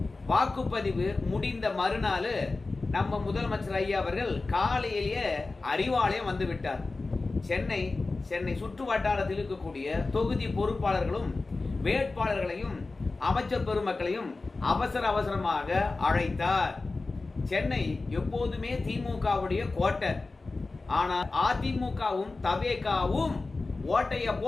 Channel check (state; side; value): quieter; right; 3.6 dB